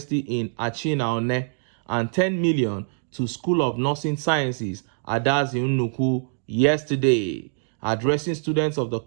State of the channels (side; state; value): left; silent; digital silence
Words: in Achinaone and 10 million to School of Nursing Sciences, Adazi Nnuku, yesterday. Addressing students of the